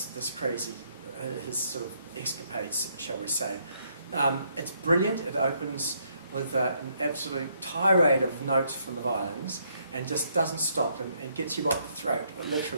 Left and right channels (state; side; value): inverted; both; correlation -0.72